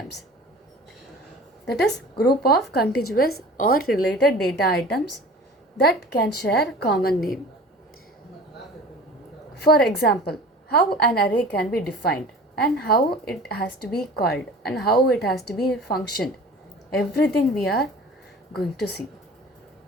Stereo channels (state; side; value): normal; both; correlation 0.41